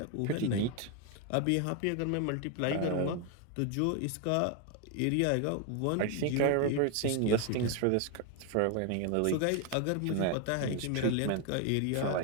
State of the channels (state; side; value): different; both; correlation 0.01